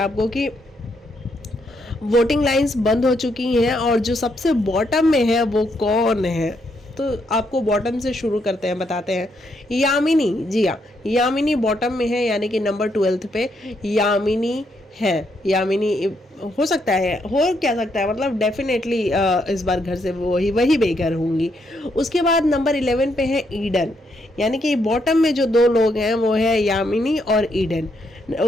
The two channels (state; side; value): normal; both; correlation 0.76